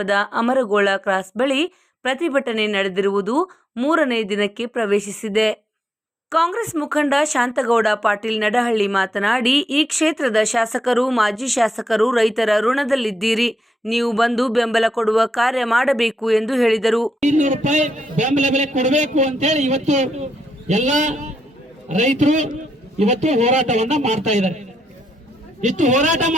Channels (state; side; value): normal; both; correlation 0.83